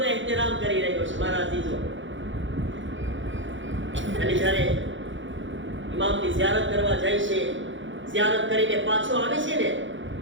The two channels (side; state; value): left; late; 0.55 ms